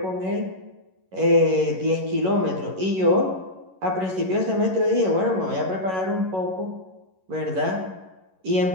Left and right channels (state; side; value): late; left; 11 ms